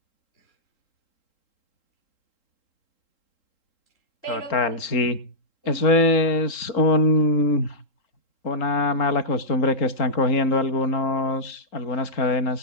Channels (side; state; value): right; late; 3.7 ms